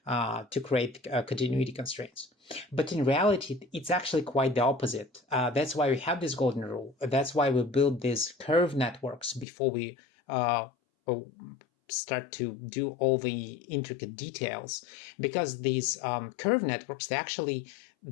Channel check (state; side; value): drops out; right; at 9.5 s